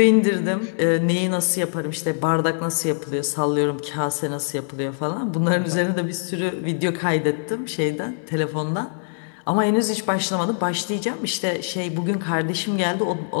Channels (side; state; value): right; silent; digital silence